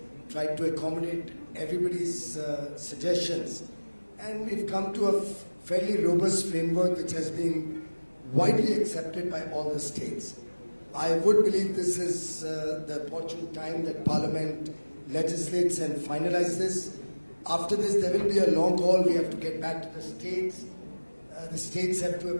tried to accommodate everybody's suggestions, and we've come to a fairly robust framework which has been widely accepted by all the states. I would believe this is the opportune time that Parliament legislates and finalizes this. After this, there will be a long haul. We have to get back to the states. The states have to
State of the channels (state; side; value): inverted; both; correlation -1.00